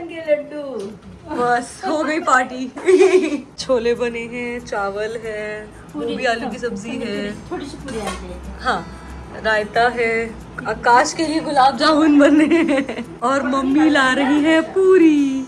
के लड्डू. बस हो गई पार्टी. छोले बने हैं, चावल है, गोभी आलू की सब्जी है, थोड़ी सी पूरी आते हैं. हाँ रायता है. आकाश के लिए गुलाब जामुन बने हैं और मम्मी ला रही है पूरी.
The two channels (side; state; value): both; identical; correlation 1.00